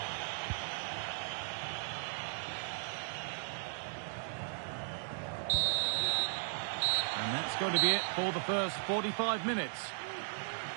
And that's going to be it for the first 45 minutes.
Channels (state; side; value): silent; left; digital silence